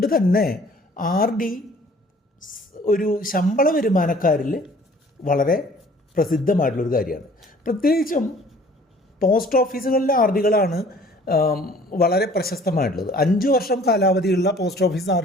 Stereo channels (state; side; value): normal; both; correlation 0.53